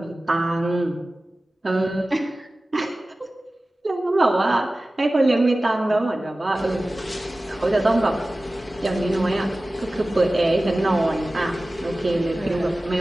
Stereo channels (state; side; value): normal; both; correlation 0.97